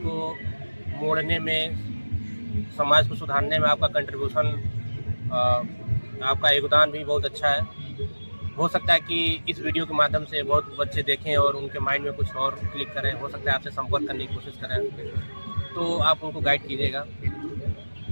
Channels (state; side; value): inverted; both; correlation -1.00